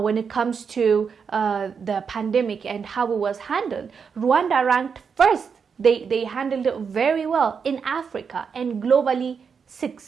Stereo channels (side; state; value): left; quieter; 6.2 dB